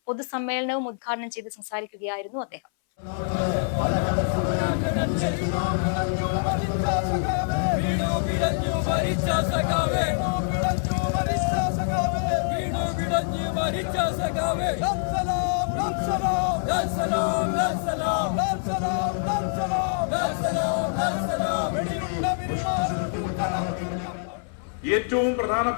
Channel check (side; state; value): right; silent; 61 dB below the other